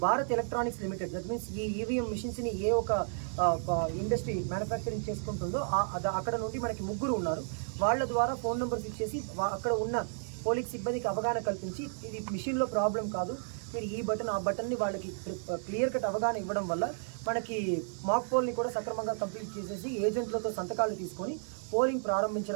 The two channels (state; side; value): silent; left; digital silence